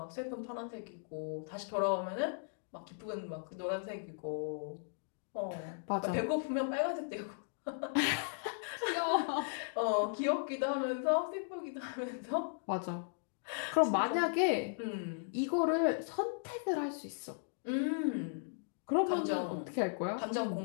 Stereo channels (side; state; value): right; silent; digital silence